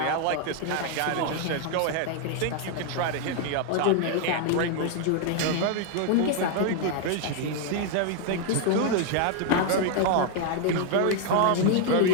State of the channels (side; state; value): both; different; correlation 0.00